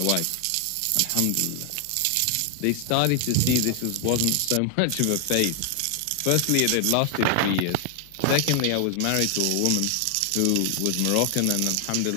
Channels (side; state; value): both; different; correlation 0.00